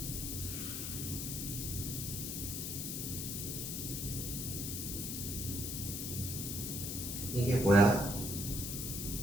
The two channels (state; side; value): noise; left; hiss, 3 dB below the sound